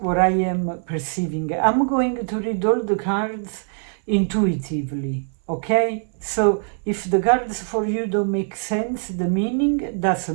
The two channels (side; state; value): left; silent; 61 dB below the other